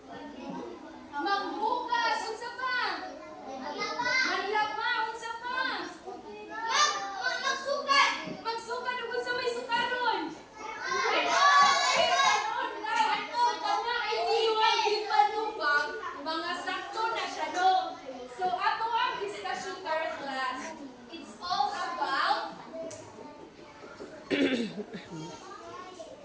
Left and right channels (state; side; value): identical; both; correlation 1.00